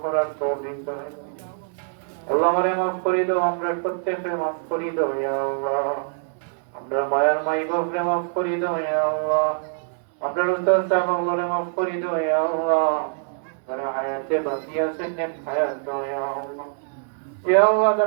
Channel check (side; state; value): left; silent; digital silence